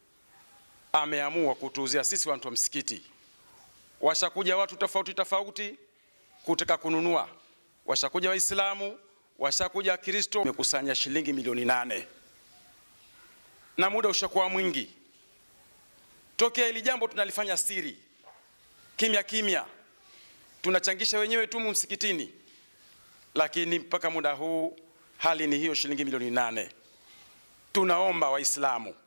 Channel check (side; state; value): both; inverted; correlation -1.00